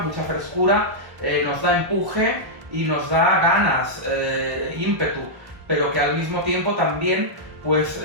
frescura, nos da empuje y nos da ganas, ímpetu, pero que al mismo tiempo también pues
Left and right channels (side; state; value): left; late; 1.1 ms